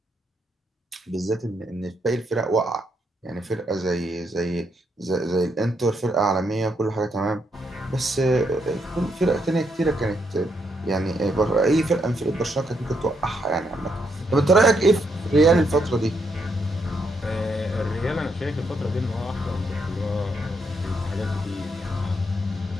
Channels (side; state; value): both; normal; correlation 0.77